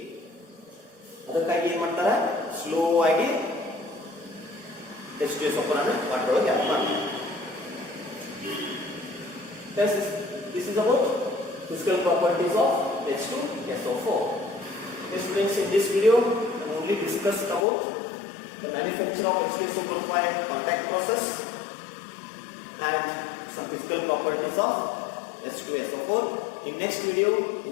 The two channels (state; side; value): drops out; right; at 17.7 s